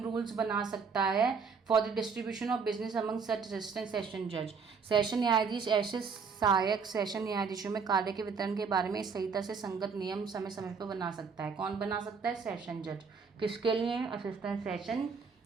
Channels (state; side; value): quieter; left; 5.5 dB